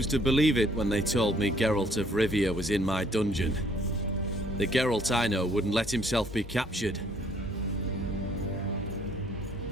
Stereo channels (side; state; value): both; normal; correlation 0.63